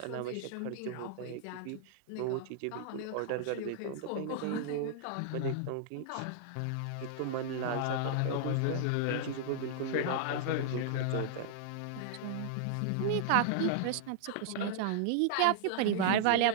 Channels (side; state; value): both; different; correlation -0.01